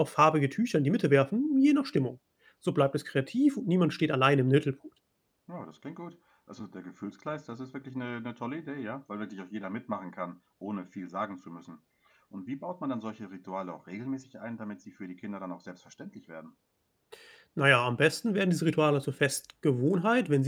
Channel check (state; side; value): identical; both; correlation 1.00